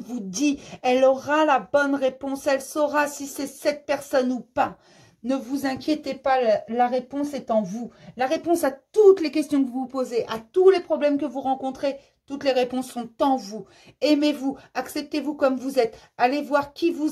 dit. Elle aura la bonne réponse, elle saura si c'est cette personne ou pas. Ne vous inquiétez pas, la réponse est en vous. La réponse à toutes les questions que vous vous posez, à tous les problèmes que vous rencontrez, toutes les réponses sont en vous. Aimez-vous, acceptez-vous comme vous êtes. Allez voir qui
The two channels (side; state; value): both; identical; correlation 1.00